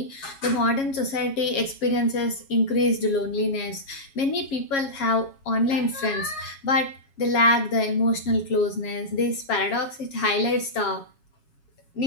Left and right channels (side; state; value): right; late; 7.3 ms